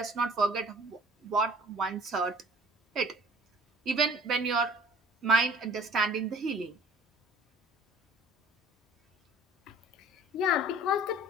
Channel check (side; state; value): both; normal; correlation 0.50